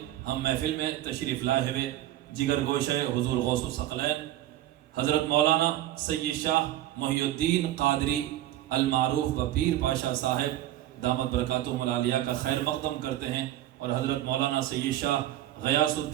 ہم محفل میں تشریف لائے ہوئے جگر گوشہ حضور غوث الثقلین حضرت مولانا سید شاہ محی الدین قادری المعروف بپیر پاشا صاحب دامت برکاتہم العالیہ کا خیر مقدم کرتے ہیں، اور حضرت مولانا سید شاہ غیاث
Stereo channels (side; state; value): left; quieter; 13.8 dB